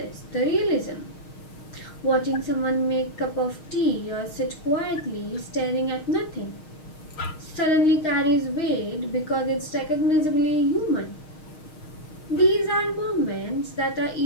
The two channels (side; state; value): right; late; 6.4 ms